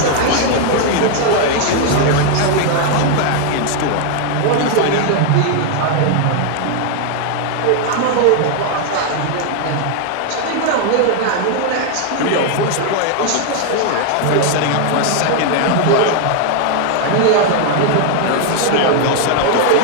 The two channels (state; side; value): different; both; correlation 0.00